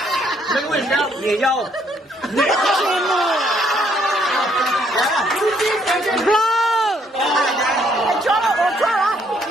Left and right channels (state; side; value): normal; both; correlation 0.69